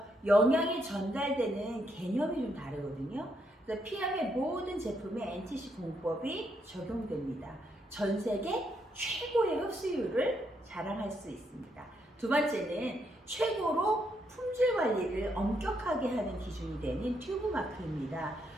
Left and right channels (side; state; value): both; normal; correlation 0.77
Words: 영양이 전달되는 개념이 좀 다르거든요. 그래서 PM의 모든 제품에 NTC 공법이 적용됩니다. 전 세계 최고의 흡수율을 자랑할 수 있습니다. 두 번째는 최고로 품질 관리를 엄격하게 하는 기준이 되는 튜브 마크입니다.